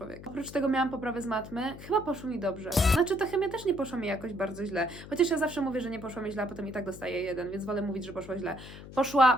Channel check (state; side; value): noise; left; hum, 14 dB below the sound